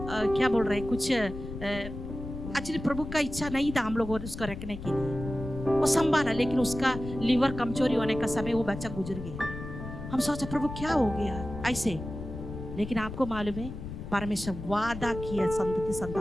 क्या बोल रहे कुछ एक्चुअली प्रभु का इच्छा नहीं था हम लोग उसको रखने के लिए, वो संभाला, लेकिन उसका लीवर कमजोरी होने का समय वो बच्चा गुजर गया। हम सोचा प्रभु क्या हो गया ऐसे, लेकिन आपको मालूम है परमेश्वर वादा किया संतति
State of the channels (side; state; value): left; noise; rumble, 9 dB below the sound